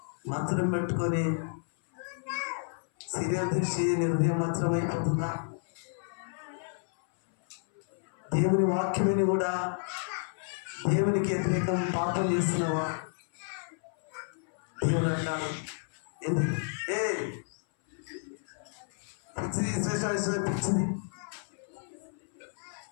మత్సరం పెట్టుకొని సీరియల్ దృష్టి హృదయం మత్సరం అయిపోతుందా? దేవుని వాక్యమని కూడా దేవునికి వ్యతిరేకం పాపం చేస్తున్నావా? దేవుడు అంటాడు ఎందుకు పిచ్చిది పిచ్చిది.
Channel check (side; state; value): right; silent; 57 dB below the other